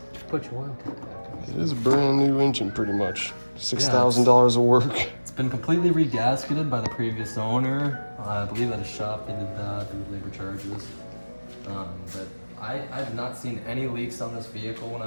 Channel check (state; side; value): inverted; both; correlation -1.00